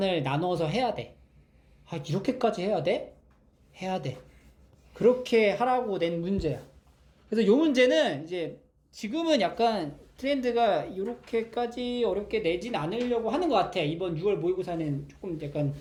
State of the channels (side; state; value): both; identical; correlation 1.00